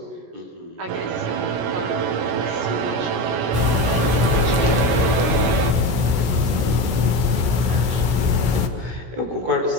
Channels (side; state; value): left; late; 16 ms